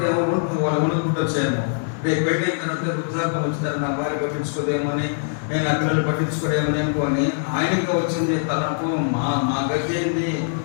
వాళ్ళ వణుకుంటూ వచ్చాయేమో. రేపు పెట్టిన తర్వాత వృద్ధాప్యం వచ్చిందని నా భార్య పట్టించుకోదేమో అని, నేను ఆ పిల్లలు పట్టించుకోదేమని అనుకోని ఆయనకి వచ్చింది తనకు. మా గతి ఏంది,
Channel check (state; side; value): silent; right; digital silence